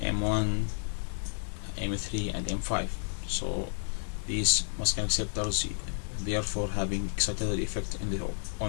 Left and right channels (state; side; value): silent; right; digital silence